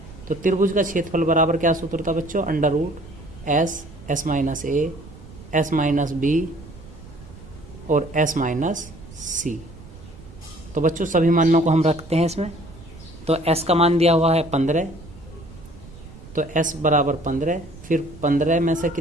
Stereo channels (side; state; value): right; noise; rumble, 18 dB below the sound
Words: तो त्रिभुज का क्षेत्रफल बराबर क्या सूत्र था बच्चों, under root S, S minus A, S minus B और एस माइनस सी। तो बच्चों सभी मानों को हम रखते हैं इसमें। तो एस का मान दिया हुआ है 15, तो एस बराबर 15, फिर 15 में से